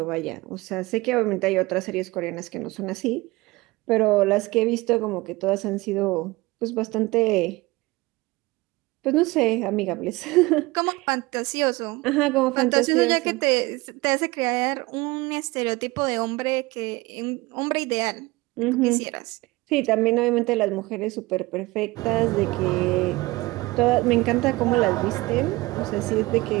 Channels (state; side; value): quieter; left; 21.6 dB